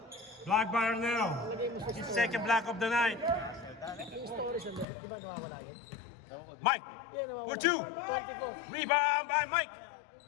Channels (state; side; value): drops out; right; at 4.9 s